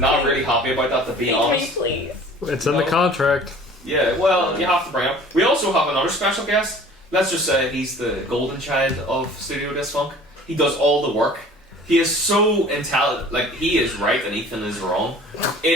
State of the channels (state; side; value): normal; both; correlation 0.47